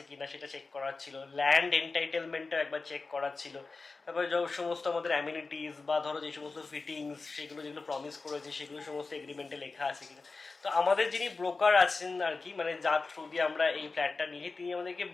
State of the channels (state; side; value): quieter; right; 4.0 dB